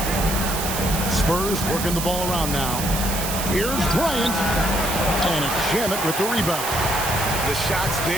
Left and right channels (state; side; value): noise; right; hiss, 4 dB below the sound